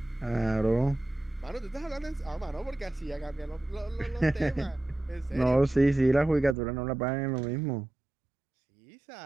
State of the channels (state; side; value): drops out; left; at 6.6 s